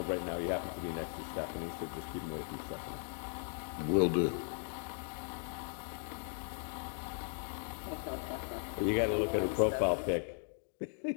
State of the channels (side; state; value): right; silent; 53 dB below the other